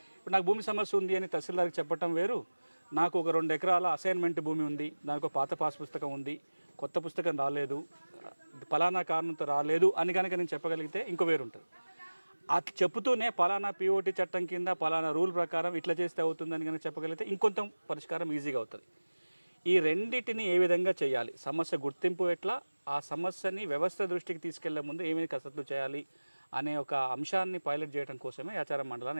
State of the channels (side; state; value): both; inverted; correlation -1.00